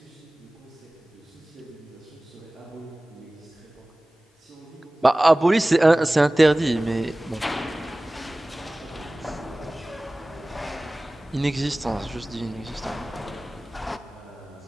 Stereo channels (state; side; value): normal; both; correlation 0.98